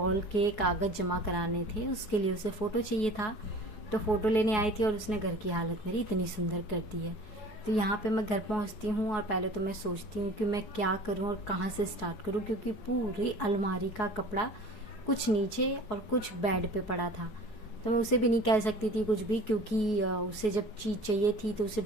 के कागज़ जमा कराने थे, उसके लिए उसे फ़ोटो चाहिए था। तो फ़ोटो लेने आई थी और उसने घर की हालत मेरी इतनी सुंदर कर दी है। तो यहाँ पे मैं घर पहुँचती हूँ और पहले तो मैं सोचती हूँ कि मैं क्या करूँ और कहाँ से स्टार्ट करूँ, क्योंकि पूरी अलमारी का कपड़ा कुछ नीचे और कुछ बेड पे पड़ा था। तो मैं उसे भी नहीं कह सकती थी कुछ भी, क्योंकि उसे जब चीज़ चाहिए थी तो उसे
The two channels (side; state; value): right; late; 4.7 ms